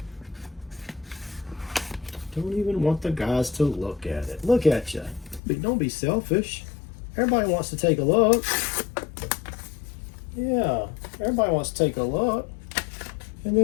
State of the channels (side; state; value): right; drops out; at 5.4 s